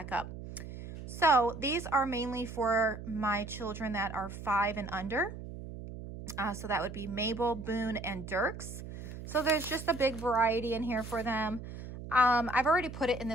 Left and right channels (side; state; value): right; noise; hum, 11 dB below the sound